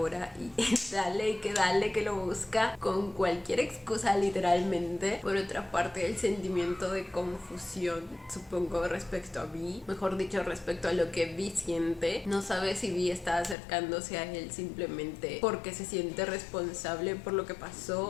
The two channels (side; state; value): right; drops out; at 13.6 s